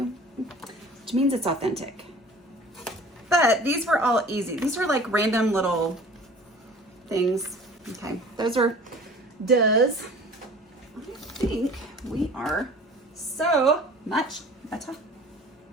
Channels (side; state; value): both; normal; correlation 0.45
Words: which means it's authentic. But these were all easy. These were like random little things. Okay, those are does. I think we are so much better.